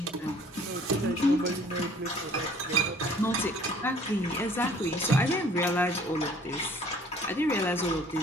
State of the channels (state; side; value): normal; both; correlation 0.54